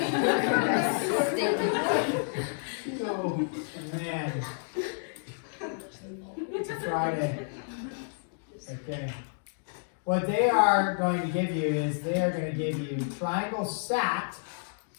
So, man, it's a Friday. Okay. What they are going to give you is they are going to give you triangle SAT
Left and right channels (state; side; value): silent; right; digital silence